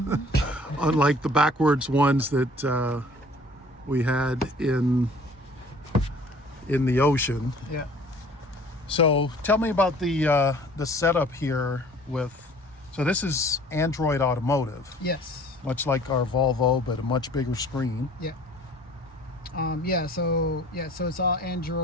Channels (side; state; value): both; normal; correlation 0.51